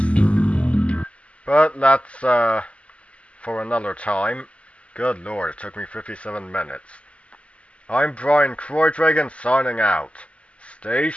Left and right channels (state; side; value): late; right; 0.060 ms